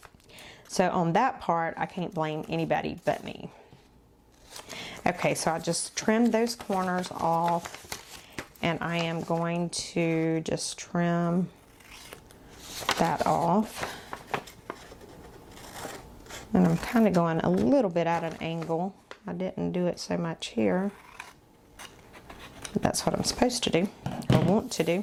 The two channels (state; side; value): identical; both; correlation 1.00